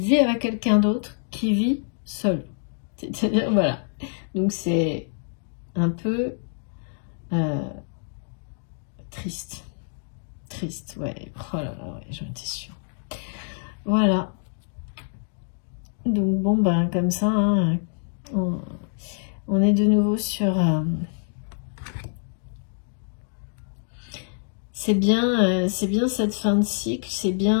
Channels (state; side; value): silent; right; digital silence